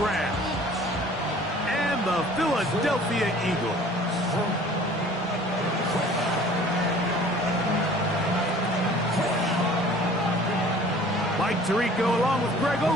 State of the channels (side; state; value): both; normal; correlation 0.49